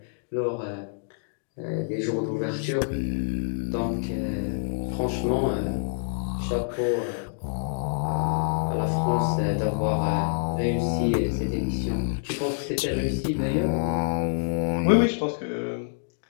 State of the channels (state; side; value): silent; right; digital silence